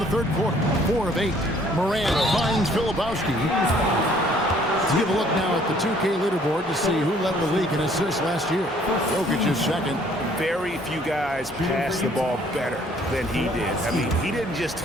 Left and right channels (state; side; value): normal; both; correlation 0.60